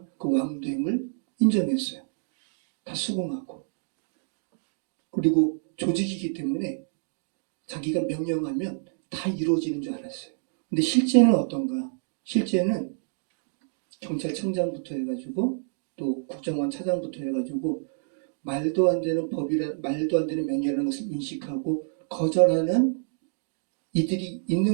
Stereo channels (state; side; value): silent; left; digital silence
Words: 그 왕됨을 인정했어요. 다 수긍하고. 그리고 조직이기 때문에 자기가 명령하면 다 이루어지는 줄 알았어요. 근데 실제는 어떤가? 실제는 경찰청장부터 해가지고 또 국정원 차장부터 해가지고 말도 안 되는 말도 안 되는 명령이라는 것을 인식하고 거절하는 이들이